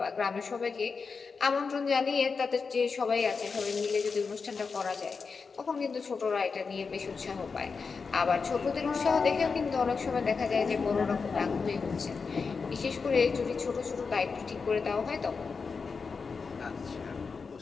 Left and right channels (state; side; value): quieter; right; 5.0 dB